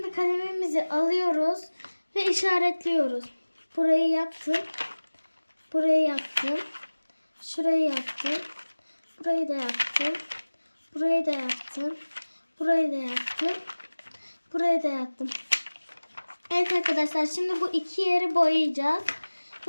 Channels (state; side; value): inverted; both; correlation -1.00